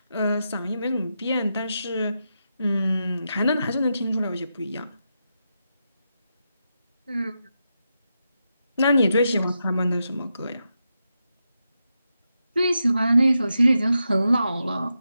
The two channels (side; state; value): both; inverted; correlation -0.86